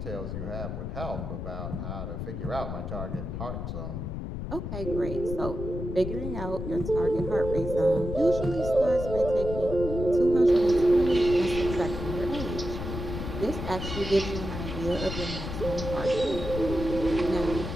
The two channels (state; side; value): noise; left; rumble, 6 dB below the sound